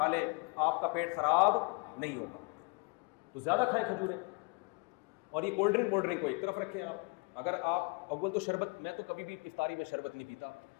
لیں آپ کا پیٹ خراب نہیں ہوگا. تو زیادہ کھائیں کھجوریں. اور یہ کولڈ ڈرنک کو ایک طرف رکھیں آپ. اگر آپ اول تو شربت, میں تو کبھی بھی افطاری میں شربت نہیں پیتا,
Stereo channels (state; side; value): quieter; right; 31.1 dB